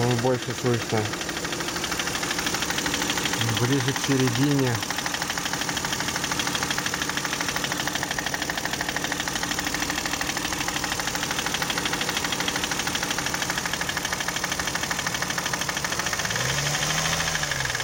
больше слышно. Ближе к середине.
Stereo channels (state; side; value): identical; both; correlation 1.00